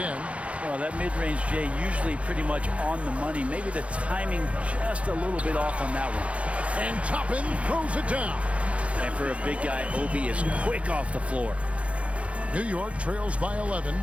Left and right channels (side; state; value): left; late; 0.063 ms